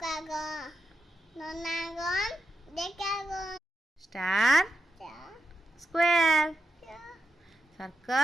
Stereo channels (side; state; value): both; normal; correlation 0.86